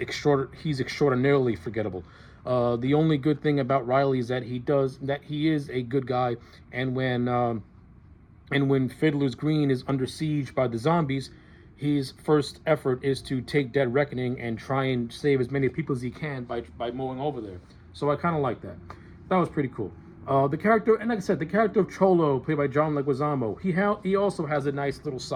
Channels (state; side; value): identical; both; correlation 1.00